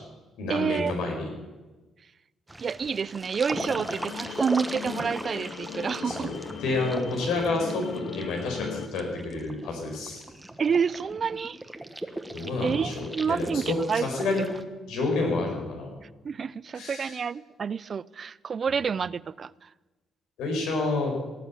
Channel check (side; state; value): both; normal; correlation 0.74